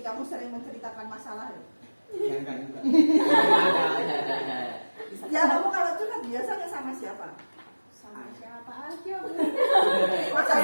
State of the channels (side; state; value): both; inverted; correlation -1.00